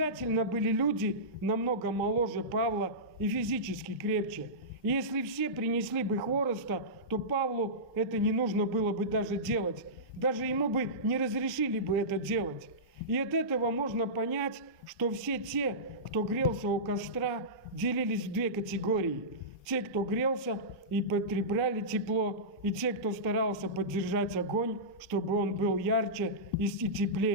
были люди намного моложе Павла и физически крепче. И если все принесли бы хвороста, то Павлу это не нужно было бы даже делать. Даже ему бы не разрешили бы это делать. И от этого можно понять, что все те, кто грелся у костра, делились в 2 категории. Те, кто грелся и потребляли тепло, и те, кто старался поддержать огонь, чтобы он был ярче и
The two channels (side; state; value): both; normal; correlation -0.18